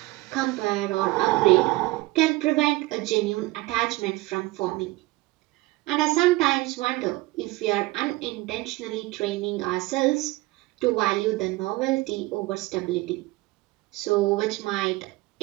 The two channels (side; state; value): left; quieter; 20.6 dB